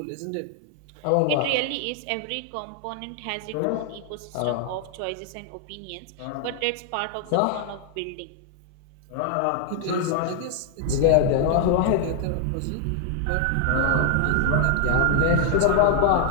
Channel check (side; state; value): both; different; correlation 0.00